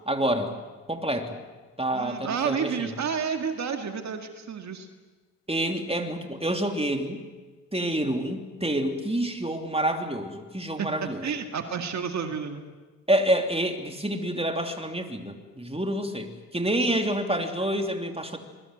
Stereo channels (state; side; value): normal; both; correlation 0.42